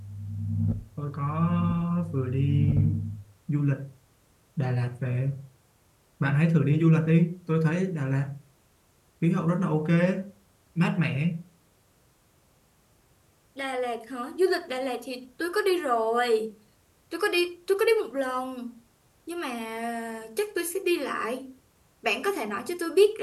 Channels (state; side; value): identical; both; correlation 1.00